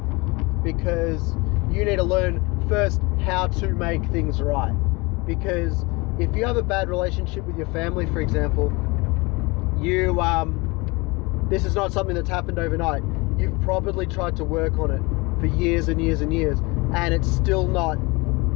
because you need to learn first how to make things right. Because if you have a bad relationship with your family, for example, this is not something that's happened overnight. You've probably tried to work on it for years and years and years, and it's still not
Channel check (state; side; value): quieter; right; 25.5 dB